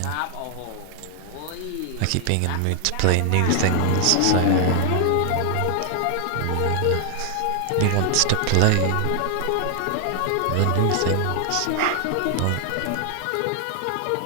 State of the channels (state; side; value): different; both; correlation 0.00